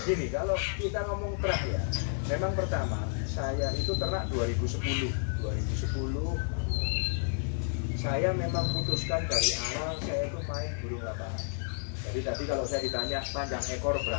Gini, kalau kita ngomong terah ya, memang pertama saya itu ternak 2010 saya memang putuskan dari awal saya itu main burung lapangan. Jadi tadi kalau saya ditanya panjang ekor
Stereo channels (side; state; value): right; silent; 57 dB below the other